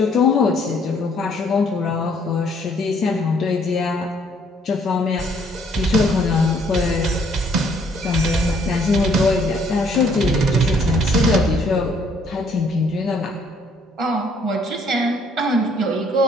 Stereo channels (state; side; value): normal; both; correlation 0.64